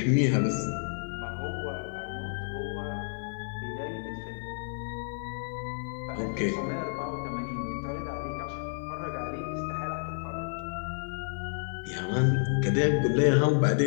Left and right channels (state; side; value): silent; right; 58 dB below the other